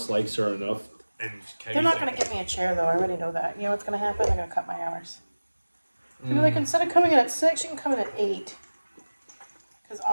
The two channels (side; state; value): both; inverted; correlation -1.00